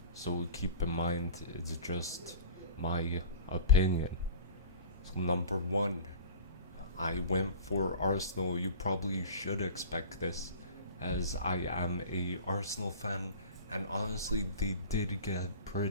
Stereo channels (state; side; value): inverted; both; correlation -0.38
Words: so keep in mind it's just my opinion. So number one, I went for Arsenal. You probably should expect this, as I am a Arsenal fan, and honestly, they did get